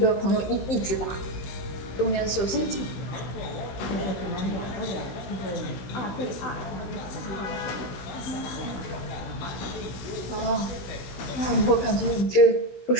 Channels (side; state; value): right; late; 16 ms